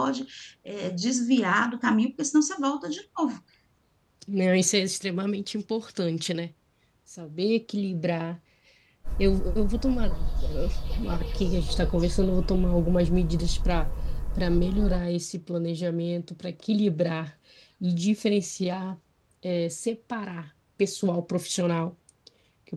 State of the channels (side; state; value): both; identical; correlation 1.00